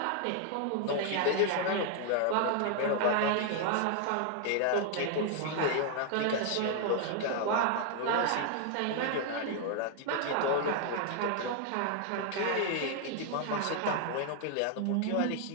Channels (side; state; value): both; different; correlation 0.00